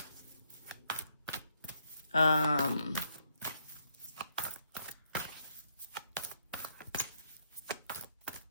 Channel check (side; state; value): both; inverted; correlation -0.75